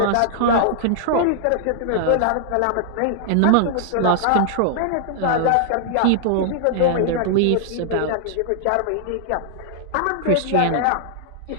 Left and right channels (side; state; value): both; different; correlation -0.01